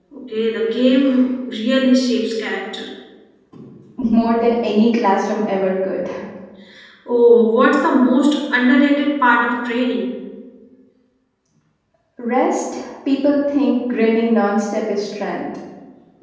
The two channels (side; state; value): both; identical; correlation 1.00